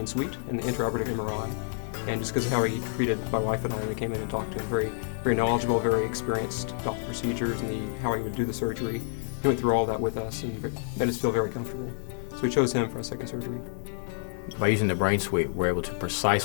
and the intraoperative MRI, and just because of how he treated my wife and I. We came in and talked to him, very, very knowledgeable, very experienced about the procedures and how he would do the surgery. He went through all that with us and made us feel very comfortable. So we chose him for our second surgery. By using the BrainSuite, we're able to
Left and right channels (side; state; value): right; silent; digital silence